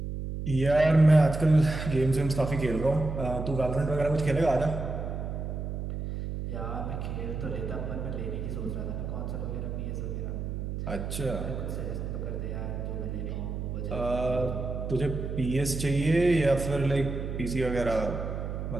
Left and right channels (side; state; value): right; noise; hum, 4 dB below the sound